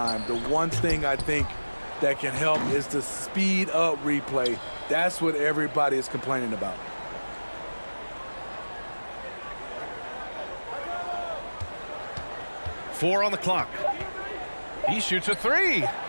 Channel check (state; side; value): inverted; both; correlation -1.00